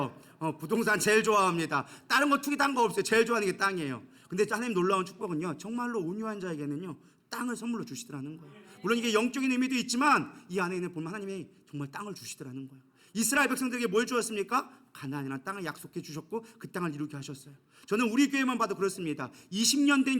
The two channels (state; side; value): identical; both; correlation 1.00